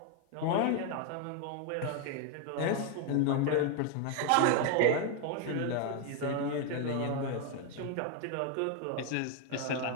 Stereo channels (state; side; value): different; both; correlation 0.01